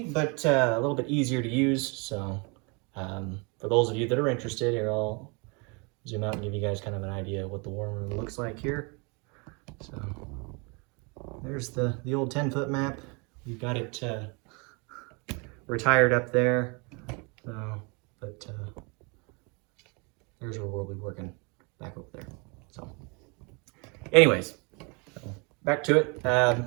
but a little bit easier to use. So for those of you that are interested, here I'll zoom out and give you guys kind of an idea of what the war room looks like here. So there's the old 10-foot map. We've got it retired up there. But here's where we'll be working back over there. So anyways, back to it.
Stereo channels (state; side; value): quieter; left; 31.4 dB